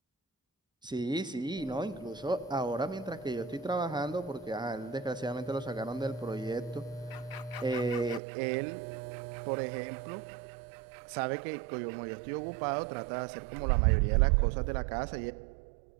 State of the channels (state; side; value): drops out; left; at 8.2 s